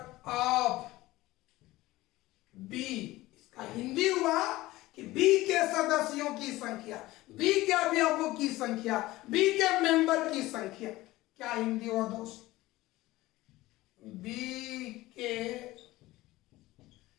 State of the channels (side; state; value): right; quieter; 18.1 dB